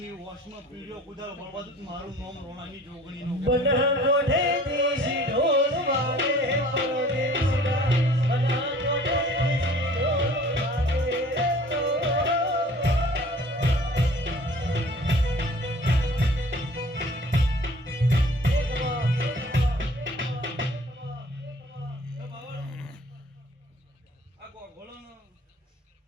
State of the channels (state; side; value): normal; both; correlation 0.50